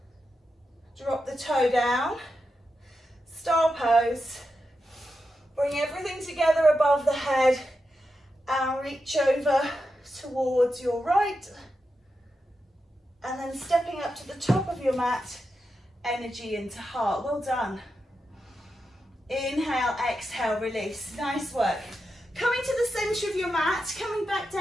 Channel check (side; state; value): both; normal; correlation 0.88